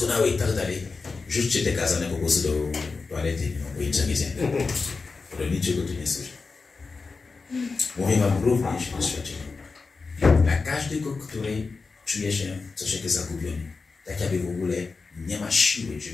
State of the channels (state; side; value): quieter; right; 4.4 dB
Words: i tak dalej. Rzućcie te kazania po prostu do toalety, bo nic nie zjemy. Do niczego tu nie służy. Mówię wam również doświadczenie. Dla każdego, który czuje się troszeczkę zagubiony, tak jakby w ogóle nie ma siły,